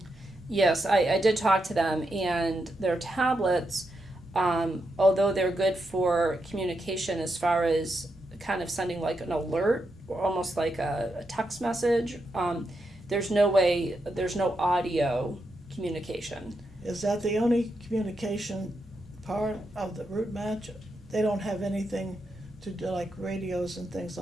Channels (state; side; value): normal; both; correlation 0.84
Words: Yes, I did talk to them, and their tablets, although they're good for communication as far as kind of sending like an alert, or almost like a text message, there's no audio communication. Is that the only communication part of the Route Match? They don't have anything to do like radios and things